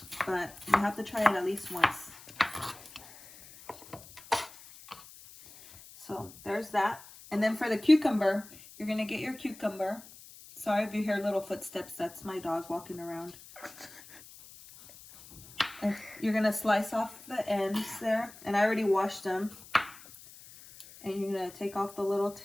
but you have to try it at least once. So there's that. And then for the cucumber, you're gonna get your cucumber. Sorry if you hear little footsteps, that's my dog walking around. And you're gonna slice off the ends there, and I already washed them. And you're gonna take off the little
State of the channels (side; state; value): left; noise; hiss, 19 dB below the sound